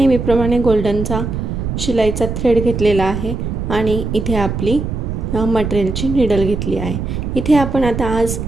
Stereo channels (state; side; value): noise; right; rumble, 4 dB below the sound